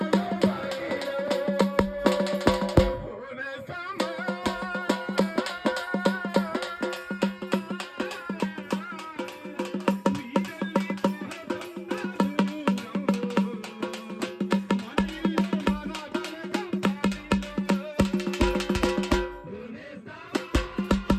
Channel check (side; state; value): both; identical; correlation 1.00